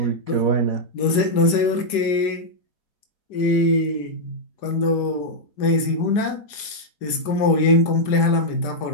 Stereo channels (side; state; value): right; late; 4.9 ms